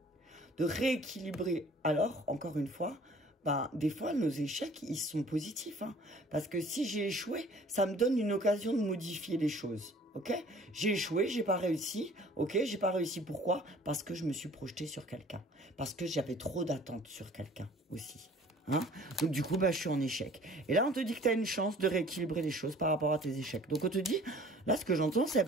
De rééquilibrer. Alors, encore une fois, ben, des fois, nos échecs, ils sont positifs. Hein, parce que si j'ai échoué, ça me donne une occasion de modifier les choses. Ok? J'ai échoué, j'ai pas réussi. Ok? J'ai pas réussi. Pourquoi? Parce que je me suis projeté sur quelqu'un. Parce que j'avais trop d'attentes sur quelqu'un aussi. Hein? Donc du coup, bah, je suis en échec. Et là, on te dit que tu as une chance de rééquilibrer les choses par rapport à tes échecs. Donc on te dit, là, ce que j'entends, c'est,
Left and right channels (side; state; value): both; normal; correlation 0.51